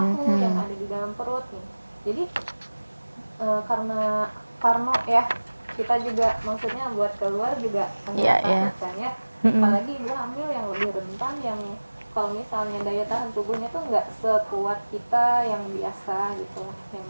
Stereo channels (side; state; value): both; inverted; correlation -1.00